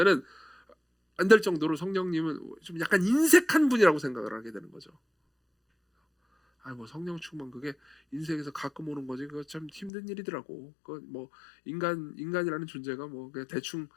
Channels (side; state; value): right; drops out; at 9.9 s